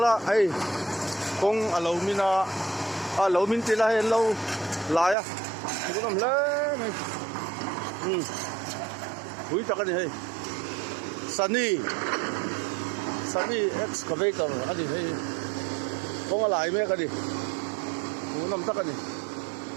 ai kong alo mina alo min tila hen lo la ya ku nam le này hui ta cái này Sunny excavator cái gì hay kong lại mấy cái gì ku nam ta cái này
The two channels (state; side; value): drops out; left; at 5.2 s